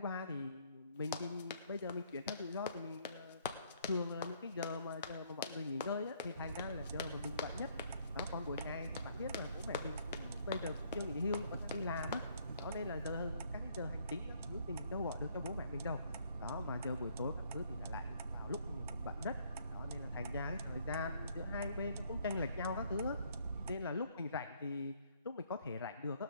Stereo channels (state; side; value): inverted; both; correlation -0.66